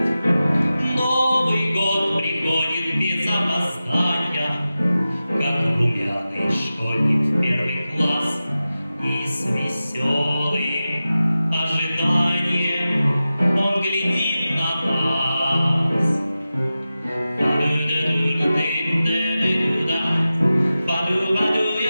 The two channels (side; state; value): both; inverted; correlation -0.94